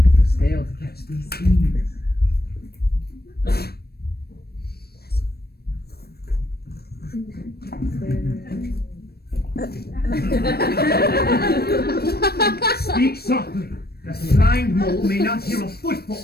Fail to catch these thieves. Speak softly, that the blind mole may not hear a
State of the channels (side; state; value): right; late; 0.46 ms